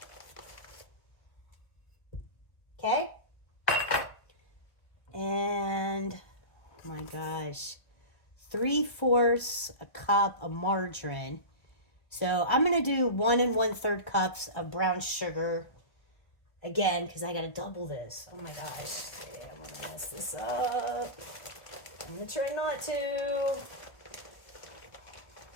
Okay? And, oh my gosh, 3/4 a cup of margarine. So I'm going to do 1 1/3 cups of brown sugar. Again, because I got to double this. Oh my gosh. Yeah, I'm going to mess this up. I'm going to try not to.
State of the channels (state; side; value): late; right; 1.3 ms